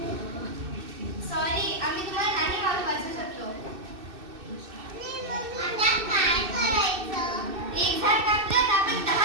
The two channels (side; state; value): left; late; 2.6 ms